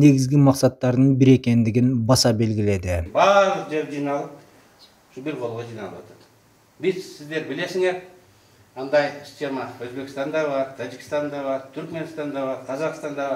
максаттарынын бири экендигин баса белгиледи. Баардык жер жыйналып, ушу бир колго жыйналып атат. Биз сиздер билесиңер, андай схема Өзбекстанда бар, Тажикстанда бар, Түркменстанда бар, Казакстанда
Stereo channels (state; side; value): identical; both; correlation 1.00